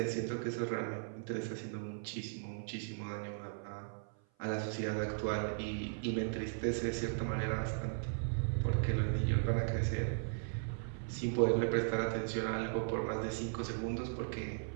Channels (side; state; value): left; silent; 53 dB below the other